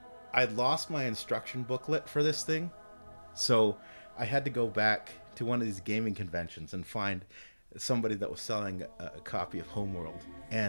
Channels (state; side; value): inverted; both; correlation -1.00